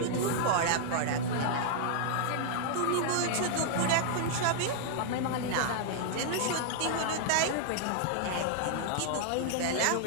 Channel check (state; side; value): different; both; correlation -0.01